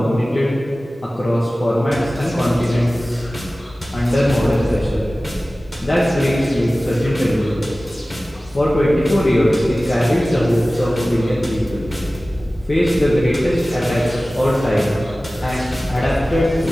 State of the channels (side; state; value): both; normal; correlation 0.97